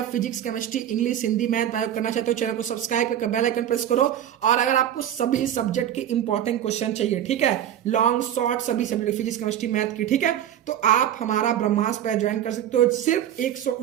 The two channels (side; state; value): left; quieter; 10.8 dB